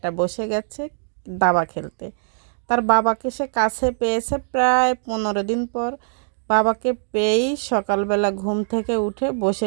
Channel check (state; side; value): silent; left; digital silence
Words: বসে গেছে দাবা খেলতে। তার বাবাকে সে কাছে পেয়েছে প্রায় 15 দিন পর। বাবাকে পেয়েই সকালবেলা ঘুম থেকে উঠে